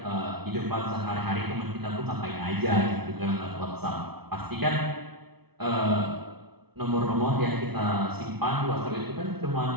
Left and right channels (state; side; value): late; left; 0.98 ms